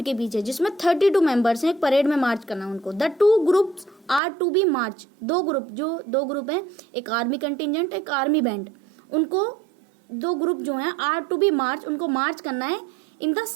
के पीछे जिसमें 32 मेंबर्स हैं, एक परेड में मार्च करना है उनको। The two groups are to be march. दो ग्रुप हैं, एक आर्मी कंटिजेंट एक आर्मी बैंड, उनको दो ग्रुप जो हैं आर टू बी मार्च, उनको मार्च करना है in the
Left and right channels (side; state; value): left; drops out; at 4.2 s